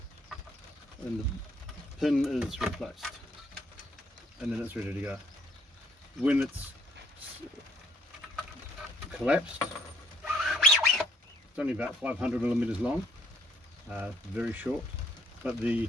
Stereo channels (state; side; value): normal; both; correlation 0.65